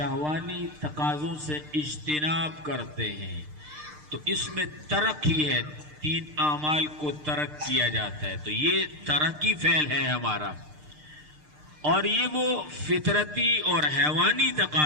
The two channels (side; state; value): left; late; 6.6 ms